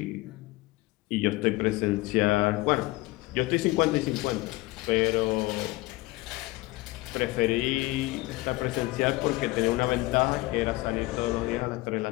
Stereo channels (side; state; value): right; quieter; 20.6 dB